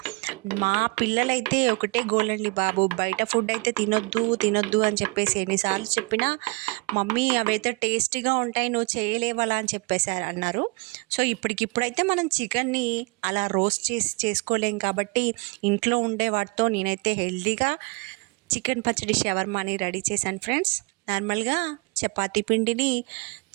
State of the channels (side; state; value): left; quieter; 28.4 dB